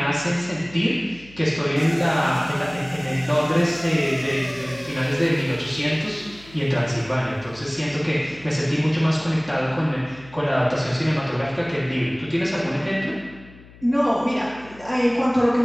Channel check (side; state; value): left; noise; hum, 22 dB below the sound